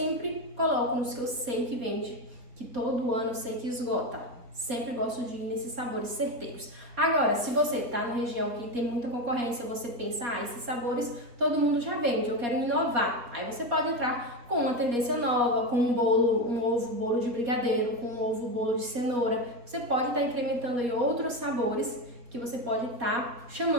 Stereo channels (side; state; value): left; late; 4.4 ms